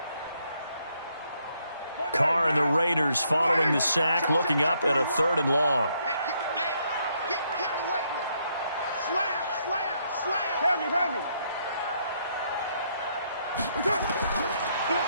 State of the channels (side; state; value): both; inverted; correlation -0.73